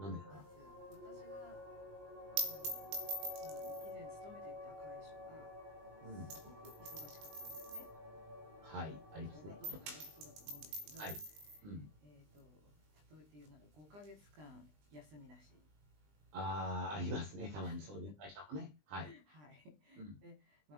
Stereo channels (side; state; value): left; late; 20 ms